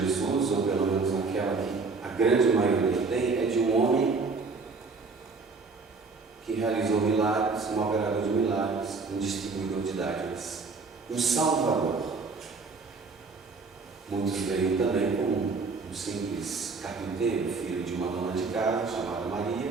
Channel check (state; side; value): quieter; left; 4.3 dB